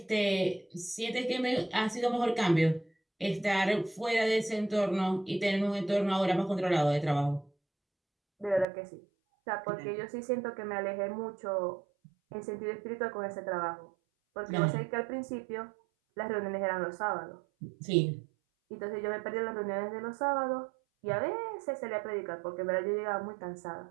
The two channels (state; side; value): drops out; left; at 8.7 s